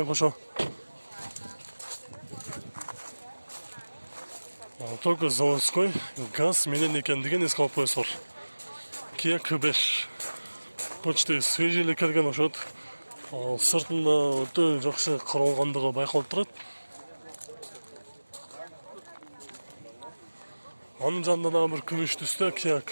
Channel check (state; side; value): inverted; both; correlation -1.00